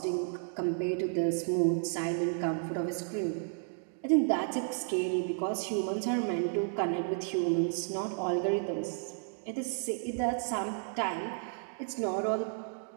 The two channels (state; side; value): silent; left; digital silence